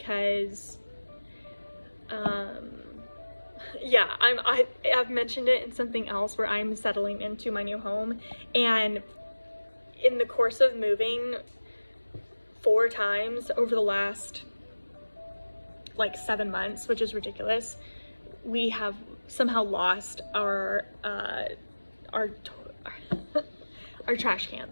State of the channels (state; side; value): inverted; both; correlation -1.00